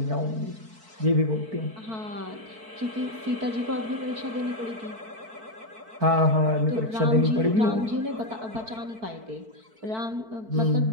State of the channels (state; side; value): late; left; 4.5 ms